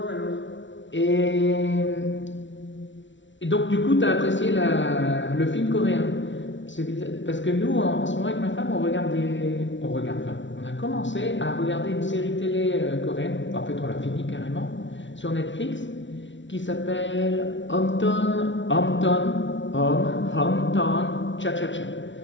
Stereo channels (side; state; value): right; late; 0.55 ms